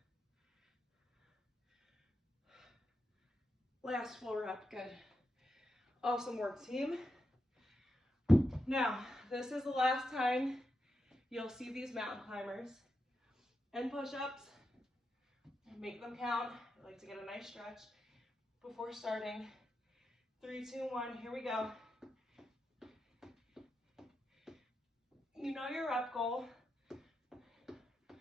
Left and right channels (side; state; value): both; normal; correlation 0.87